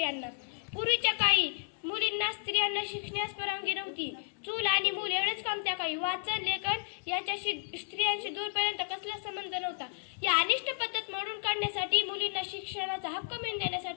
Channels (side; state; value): right; silent; digital silence